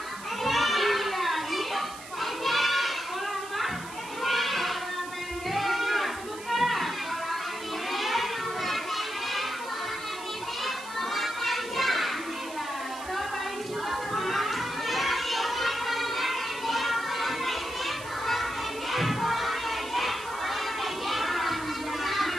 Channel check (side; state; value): right; noise; hiss, 15 dB below the sound